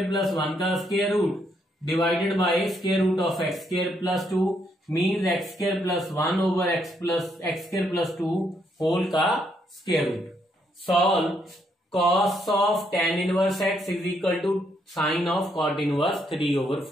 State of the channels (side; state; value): both; normal; correlation 0.74